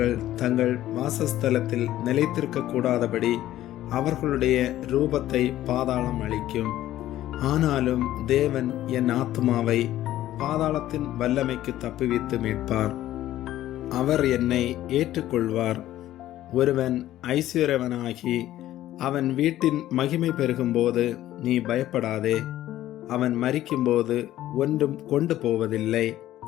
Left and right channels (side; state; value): right; quieter; 13.8 dB